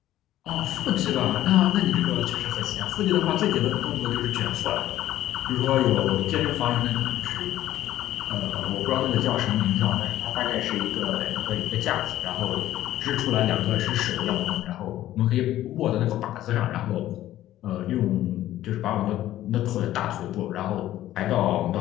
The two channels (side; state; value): right; quieter; 13.7 dB